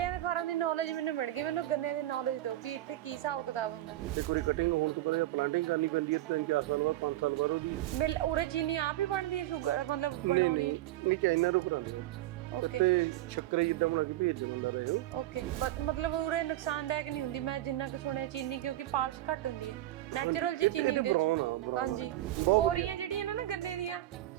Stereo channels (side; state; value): left; quieter; 14.9 dB